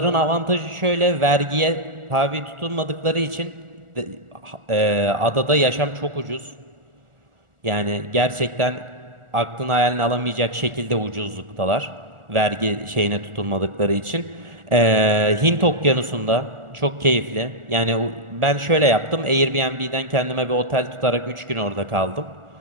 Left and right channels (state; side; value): late; left; 1.4 ms